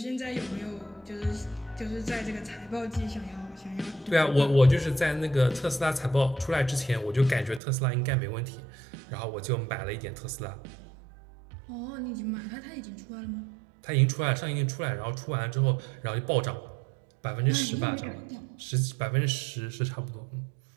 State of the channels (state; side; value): drops out; left; at 7.6 s